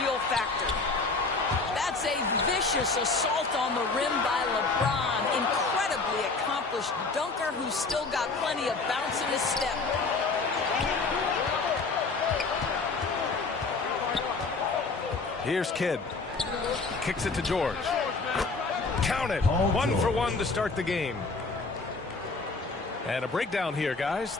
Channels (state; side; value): quieter; right; 4.0 dB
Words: factor. That's a vicious assault on the rim by LeBron. Incredibly accomplished dunker who's still got plenty of bounce in his step. Here's Kidd. Kicks it to George. Count it. 1 for 1 to start the game. And a breakdown here, guys.